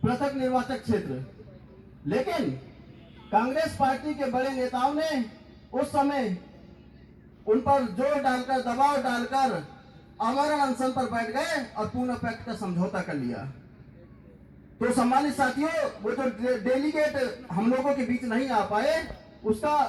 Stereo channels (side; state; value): both; identical; correlation 1.00